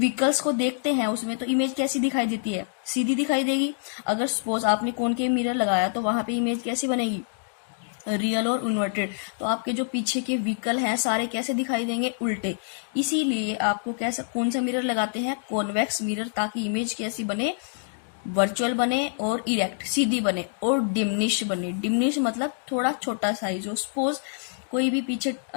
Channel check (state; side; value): silent; right; digital silence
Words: को देखते हैं उसमें तो इमेज कैसी दिखाई देती है, सीधी दिखाई देगी। अगर सपोज आपने कॉनकेव मिरर लगाया तो वहां पे इमेज कैसी बनेगी, रियल और इन्वर्टेड। तो आपके जो पीछे के व्हीकल हैं सारे कैसे दिखाई देंगे, उल्टे। इसीलिए आपको कैसा कौन सा मिरर लगाते हैं, कॉन्वेक्स मिरर, ताकि इमेज कैसी बने, वर्चुअल बने और इरेक्ट सीधी बने और डिमिनिश बने। डिमिनिश मतलब थोड़ा छोटा साइज हो। सपोज कोई भी पीछे